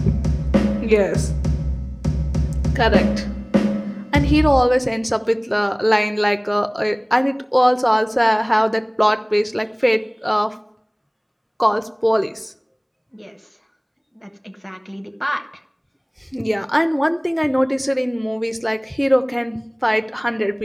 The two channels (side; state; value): both; identical; correlation 1.00